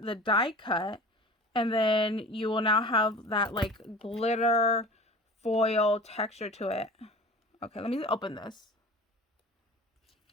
the die cut, and then you will now have that like glitter foil texture to it. Okay, let me open this.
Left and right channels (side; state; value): both; normal; correlation 0.38